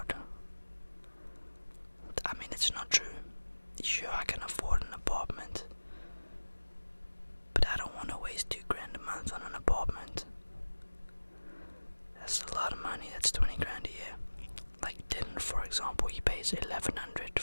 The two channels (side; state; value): both; inverted; correlation -1.00